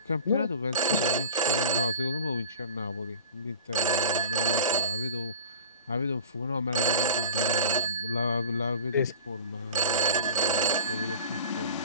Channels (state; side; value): inverted; both; correlation -0.35